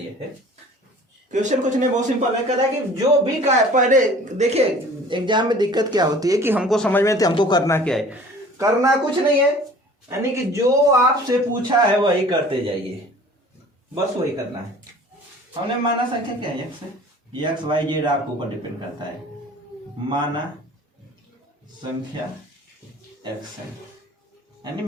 है। क्वेश्चन कुछ नहीं, बहुत सिंपल है। कह रहा है कि जो भी का पहले देखिए एग्जाम में दिक्कत क्या होती है कि हमको समझ में हमको करना क्या है, करना कुछ नहीं है, यानी कि जो आपसे पूछा है वही करते जाइए, बस वही करना है। हमने माना संख्या क्या है x y z आपके ऊपर डिपेंड करता है। माना संख्या x है, यानी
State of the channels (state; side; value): normal; both; correlation 0.47